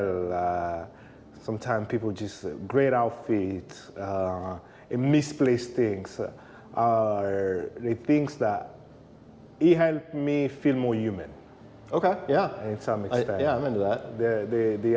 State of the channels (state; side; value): identical; both; correlation 1.00